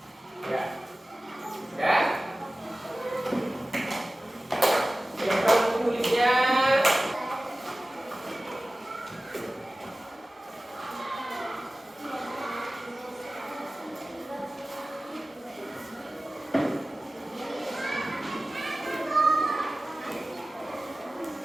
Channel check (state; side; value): normal; both; correlation 0.97